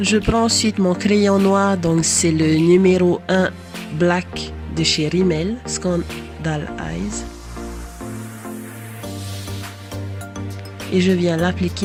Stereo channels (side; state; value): both; identical; correlation 1.00